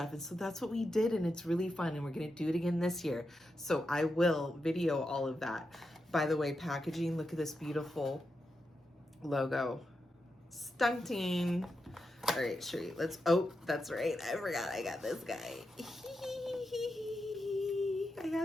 And so that's what we did, and it's really fun, and we're gonna do it again this year. So I will video all of that. By the way, packaging, look at this beautiful logo. Stunting. All right, Sherry, oh, that's right. I forgot I got this guy. I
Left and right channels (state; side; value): normal; both; correlation 0.87